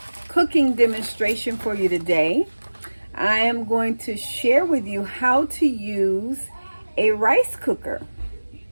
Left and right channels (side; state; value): both; inverted; correlation -1.00